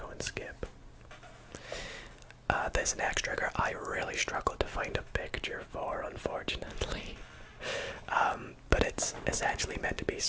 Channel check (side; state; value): both; identical; correlation 1.00